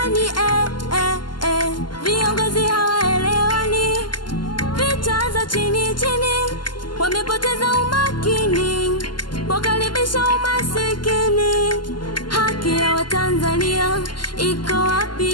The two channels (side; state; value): right; late; 0.71 ms